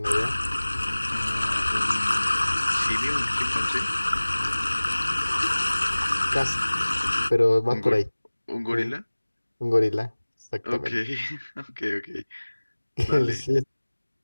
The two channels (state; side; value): inverted; both; correlation -1.00